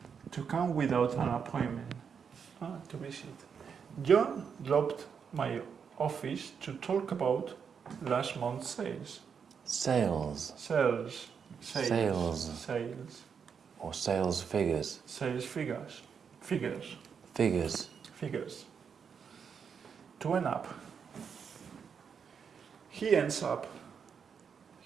To come without an appointment. To visit. John dropped my office to talk about last month's sales. Sales. Sales. Or sales figures. Sales figures. Figures. To end up. He ends up.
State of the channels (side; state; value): left; quieter; 6.7 dB